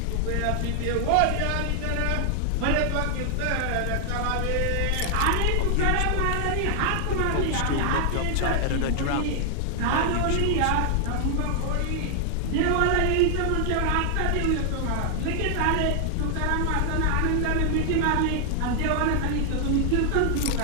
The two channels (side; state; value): both; different; correlation 0.00